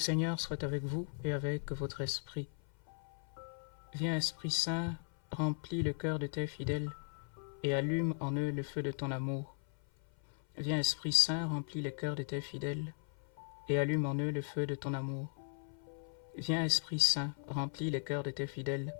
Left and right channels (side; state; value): right; silent; 53 dB below the other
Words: soit avec vous et avec votre esprit. Viens, Esprit Saint, remplis le cœur de tes fidèles et allume en eux le feu de ton amour. Viens, Esprit Saint, remplis le cœur de tes fidèles et allume en eux le feu de ton amour. Viens, Esprit Saint, remplis le cœur de tes fidèles